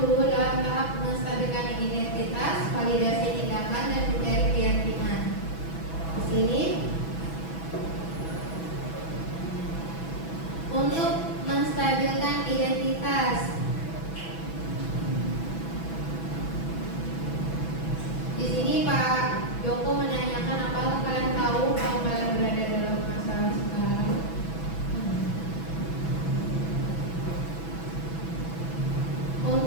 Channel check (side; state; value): right; late; 6.1 ms